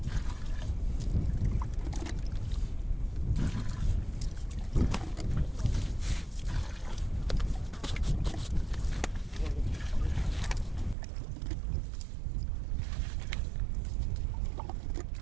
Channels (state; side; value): drops out; left; at 11.0 s